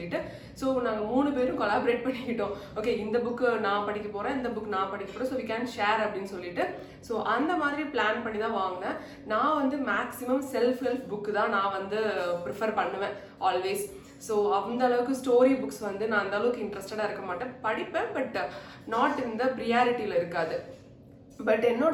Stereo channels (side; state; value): both; identical; correlation 1.00